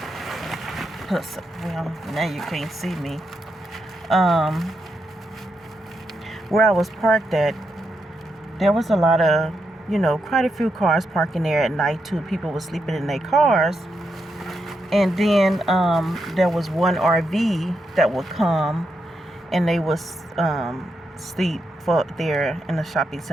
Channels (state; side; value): normal; both; correlation 0.83